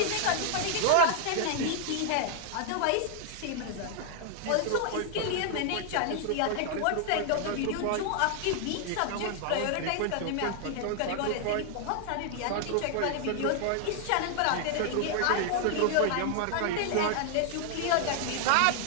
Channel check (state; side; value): different; both; correlation 0.00